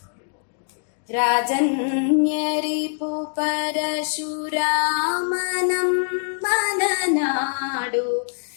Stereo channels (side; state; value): right; silent; digital silence